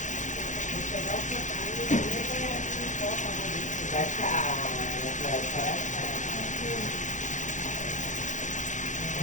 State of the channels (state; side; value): late; right; 0.36 ms